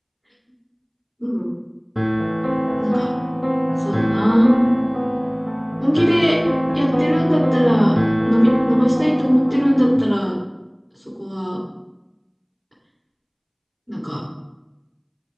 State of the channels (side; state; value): both; identical; correlation 1.00